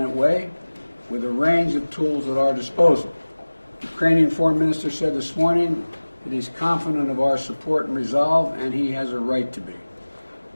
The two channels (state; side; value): inverted; both; correlation -1.00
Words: way with a range of tools at our disposal. The Ukrainian foreign minister said this morning that he's confident of our support and resolve, and he has a right to be.